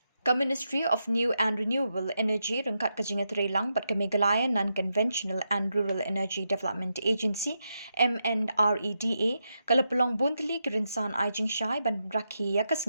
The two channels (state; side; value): inverted; both; correlation -0.85